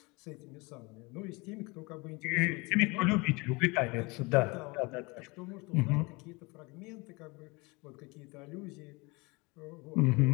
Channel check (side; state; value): right; quieter; 26.2 dB